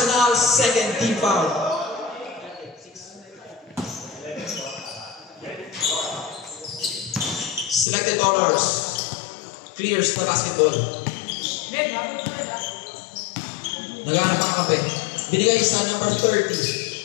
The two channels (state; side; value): drops out; right; at 7.9 s